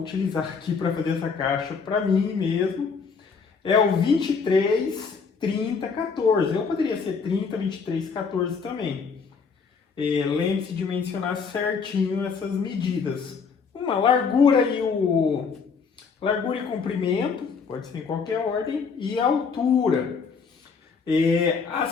aqui para fazer essa caixa para mim mesmo é o 23, 30, 14. Eu poderia ser 30, 23, 14 também. Lembre-se de mencionar certinho essas medidas. Uma largura e comprimento, pode ser em qualquer ordem, e a altura.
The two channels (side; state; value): right; quieter; 5.4 dB